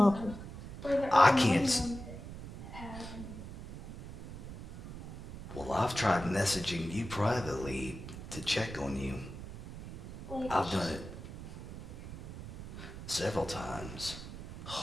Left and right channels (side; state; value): right; noise; rumble, 11 dB below the sound